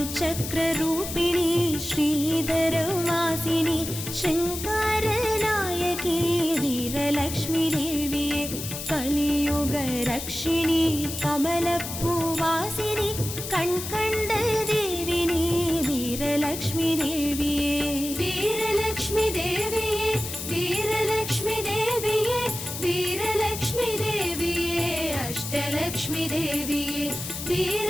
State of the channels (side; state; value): left; noise; hiss, 7 dB below the sound